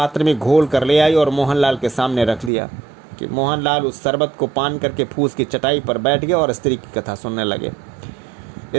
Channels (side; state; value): left; drops out; at 2.5 s